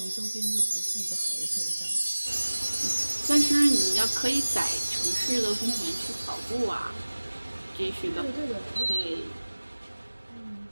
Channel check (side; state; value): both; inverted; correlation -1.00